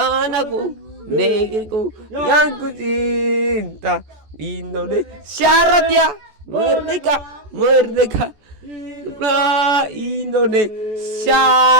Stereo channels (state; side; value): late; left; 14 ms